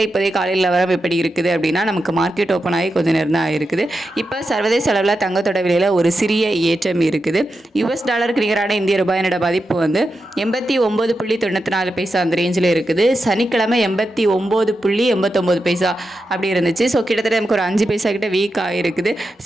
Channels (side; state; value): both; normal; correlation 0.88